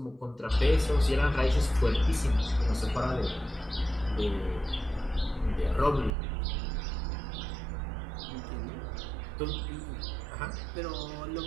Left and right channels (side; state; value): left; drops out; at 6.2 s